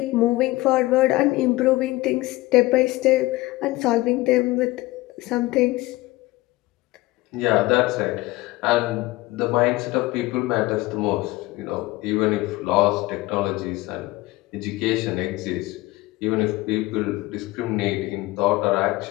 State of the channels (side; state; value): right; quieter; 19.7 dB